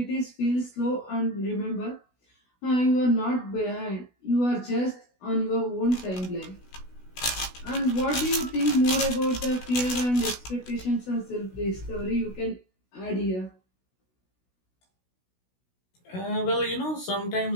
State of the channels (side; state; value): right; late; 16 ms